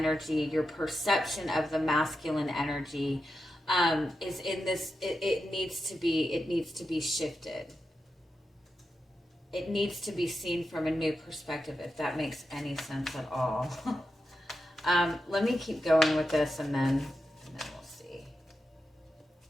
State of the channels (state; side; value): normal; both; correlation 0.88